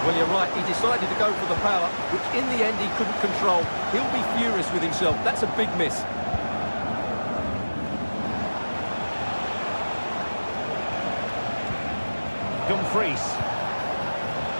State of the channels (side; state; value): both; inverted; correlation -1.00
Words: Well, you're right, he decided to go for the power, which in the end he couldn't control. He'll be furious with himself. That's a big miss. Dumfries.